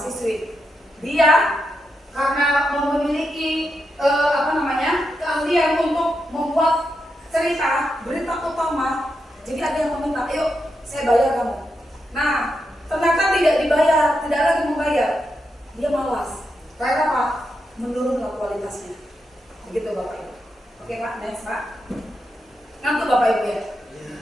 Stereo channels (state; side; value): normal; both; correlation 0.85